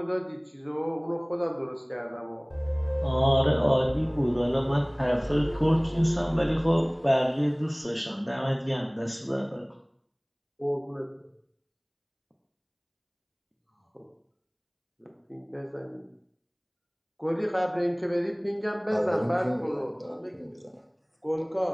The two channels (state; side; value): identical; both; correlation 1.00